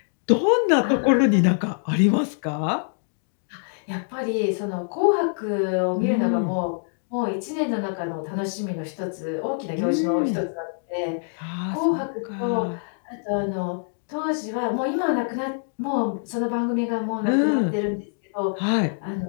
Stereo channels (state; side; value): silent; right; digital silence